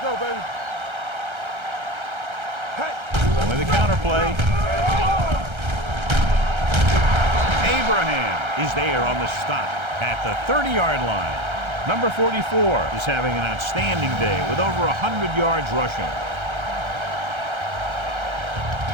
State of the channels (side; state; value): left; late; 1.3 ms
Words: baby. With a counter play. Abraham is there on the stop at the 30-yard line. Number 44 is having an outstanding day with over 100 yards rushing.